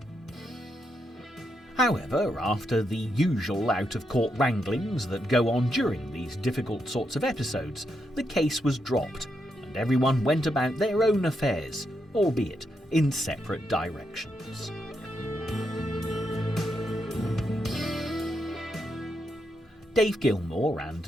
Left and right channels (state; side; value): normal; both; correlation 0.82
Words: However, after the usual out-of-court wranglings that go on during these difficult sorts of episodes, the case was dropped, and everyone went about their own affairs, albeit in separate directions. Dave Gilmour and